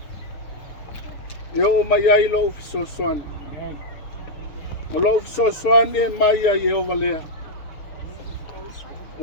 E o mai ai lo fisosoani. O lo fisosoani e mai ai e o valea.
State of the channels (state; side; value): late; right; 6.9 ms